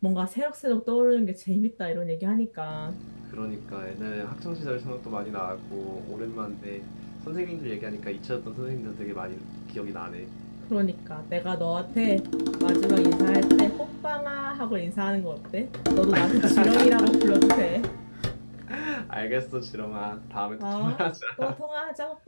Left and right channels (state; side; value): inverted; both; correlation -1.00